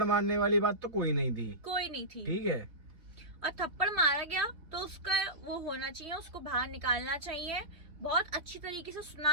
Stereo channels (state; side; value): late; left; 3.3 ms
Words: मारने वाली बात तो कोई नहीं थी, ठीक है। और थप्पड़ मारा गया तो उसका वो होना चाहिए, उसको बाहर निकालना चाहिए, बहुत अच्छी तरीके से